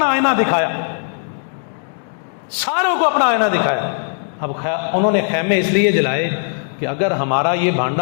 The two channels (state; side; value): silent; right; 64 dB below the other